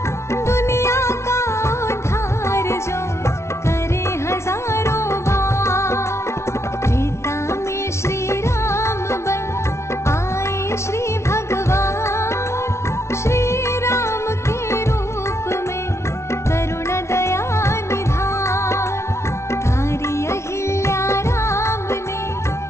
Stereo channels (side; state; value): right; late; 0.13 ms